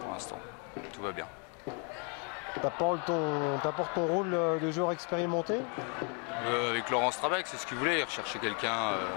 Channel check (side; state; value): right; quieter; 37.2 dB